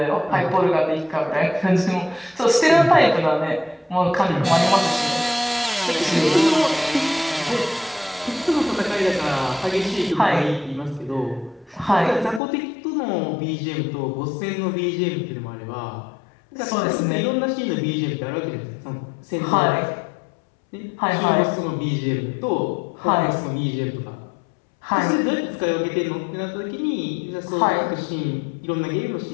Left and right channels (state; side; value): drops out; right; at 12.4 s